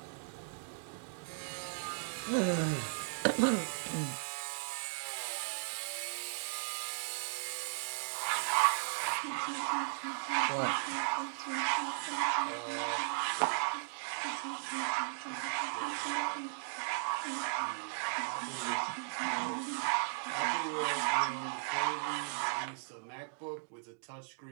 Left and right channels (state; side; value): silent; left; digital silence